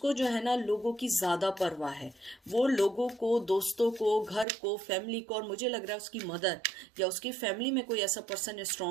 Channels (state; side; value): drops out; left; at 4.5 s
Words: जो है ना लोगों की ज़्यादा परवाह है। वो लोगों को, दोस्तों को, घर को, फैमिली को, और मुझे लग रहा है उसकी मदर या उसकी फैमिली में कोई ऐसा पर्सन